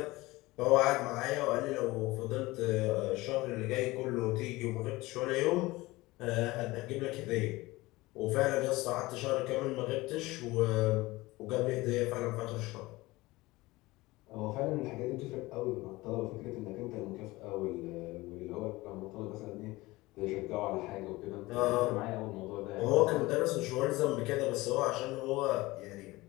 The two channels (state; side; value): quieter; right; 20.4 dB